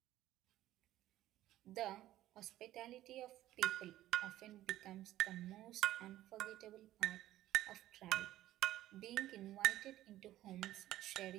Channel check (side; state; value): left; quieter; 14.3 dB